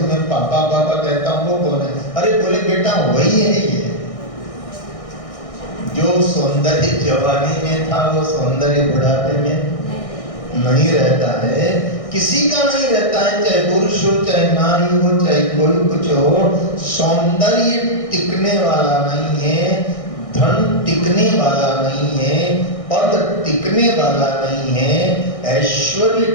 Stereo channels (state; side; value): late; right; 1.6 ms